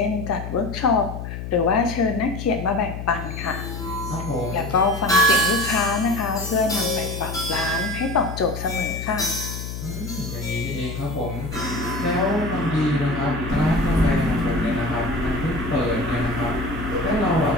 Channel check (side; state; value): left; noise; hum, 7 dB below the sound